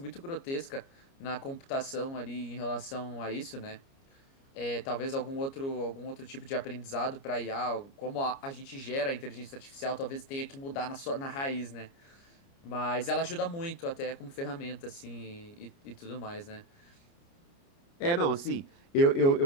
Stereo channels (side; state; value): right; late; 29 ms